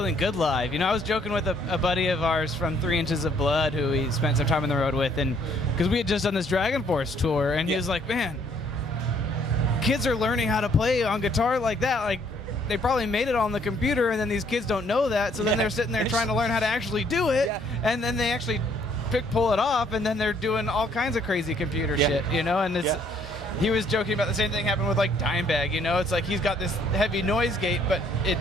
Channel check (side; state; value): both; normal; correlation 0.65